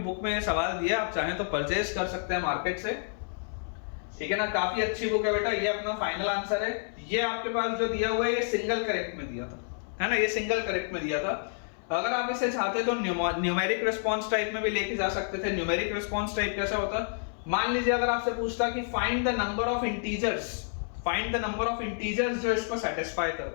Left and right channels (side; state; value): right; silent; 58 dB below the other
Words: में सवाल दिया, आप चाहें तो परचेज कर सकते हैं मार्केट से, ठीक है ना। काफी अच्छी बुक है बेटा, ये अपना फाइनल आंसर है। ये आपके पास जो दिया हुआ है ये सिंगल करेक्ट में दिया था, है ना, ये सिंगल करेक्ट में दिया था। अगर आप इसे चाहते तो न्यूमेरिक रिस्पांस टाइप में भी लेके जा सकते थे। न्यूमेरिक रिस्पांस टाइप कैसा होता, मान लीजिए अगर आपसे पूछता कि find the number of integers, find the number of integers जो इसको सेटिस्फाई